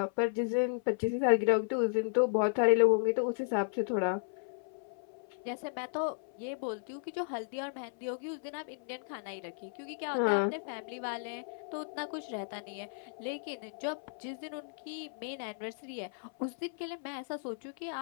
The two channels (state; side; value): silent; right; 55 dB below the other